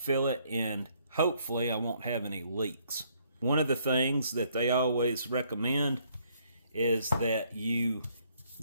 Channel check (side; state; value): both; inverted; correlation -0.67